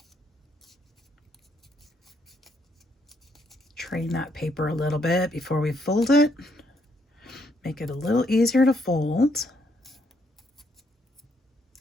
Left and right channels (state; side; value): normal; both; correlation 0.73